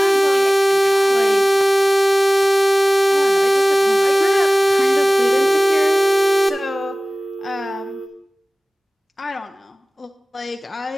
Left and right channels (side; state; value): both; normal; correlation 0.98